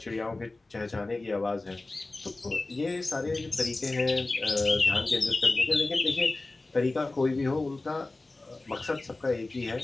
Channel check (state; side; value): quieter; right; 3.1 dB